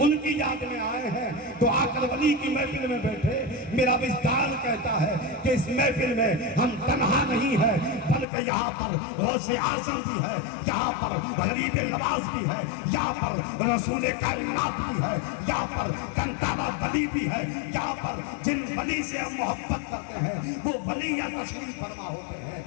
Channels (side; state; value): right; drops out; at 8.2 s